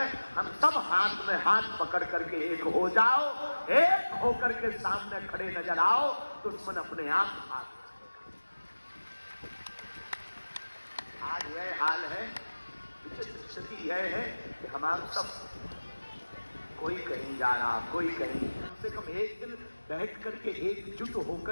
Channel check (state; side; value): inverted; both; correlation -1.00